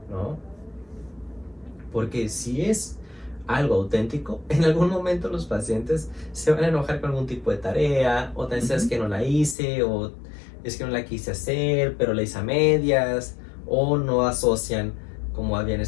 ¿no? Porque si es algo auténtico, en algún momento los pacientes se van a enojar con algún tipo de tarea, o tal vez es que no la hice, o es que no la quise hacer, pero la hice a medias, o no asocian como habían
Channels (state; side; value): drops out; right; at 9.6 s